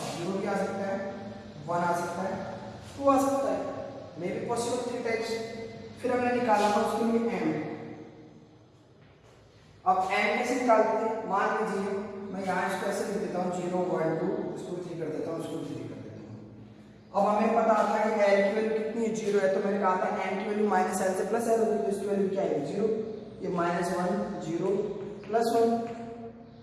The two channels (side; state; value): both; identical; correlation 1.00